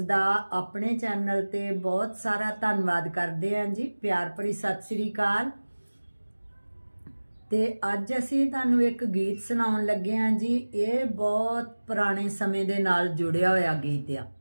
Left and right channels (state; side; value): inverted; both; correlation -1.00